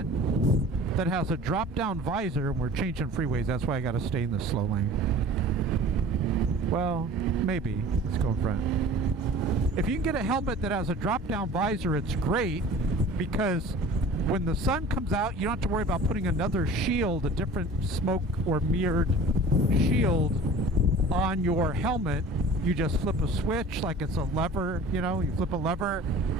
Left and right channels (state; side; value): normal; both; correlation 0.42